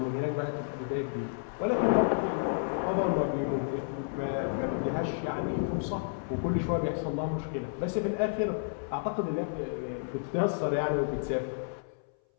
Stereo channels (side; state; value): right; silent; 57 dB below the other